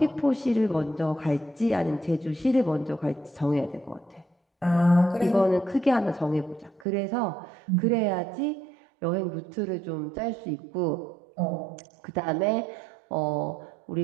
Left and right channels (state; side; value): drops out; left; at 6.9 s